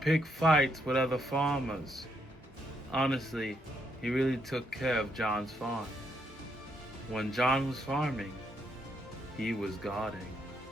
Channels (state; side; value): normal; both; correlation 0.77